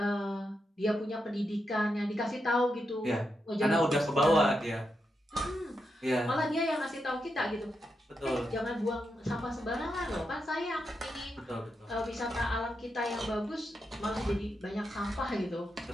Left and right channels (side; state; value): both; normal; correlation 0.85